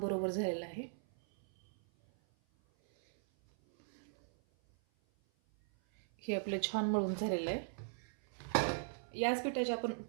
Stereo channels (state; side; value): silent; left; 52 dB below the other